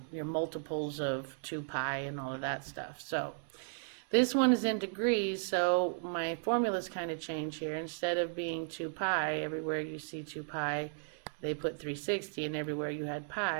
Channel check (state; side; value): silent; left; 54 dB below the other